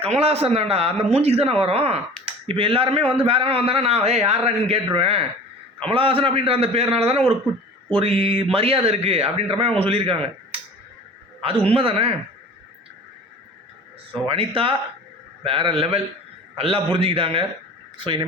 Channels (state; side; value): normal; both; correlation 0.41